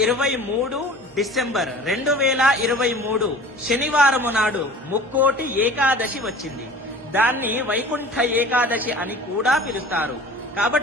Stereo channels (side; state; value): both; normal; correlation 0.42